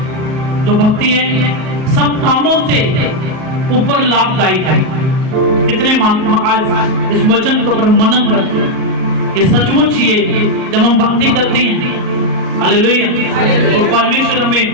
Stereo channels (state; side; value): late; left; 38 ms